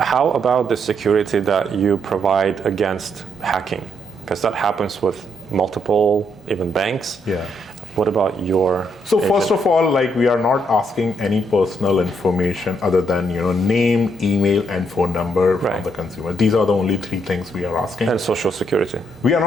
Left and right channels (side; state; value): both; normal; correlation 0.75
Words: about the security that you provide against hacking? Because that happens with multiple, even banks. Yeah. What about your So agent? First of all, like we are not asking any personal information other than name, email, and phone number from the consumer. These are the only three things we are asking. And social security. We are